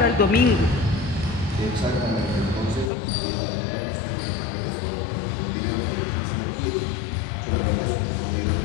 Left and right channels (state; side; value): drops out; right; at 2.9 s